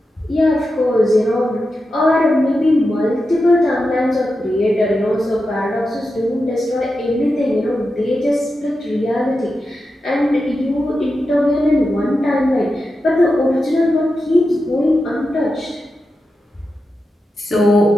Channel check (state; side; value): normal; both; correlation 0.90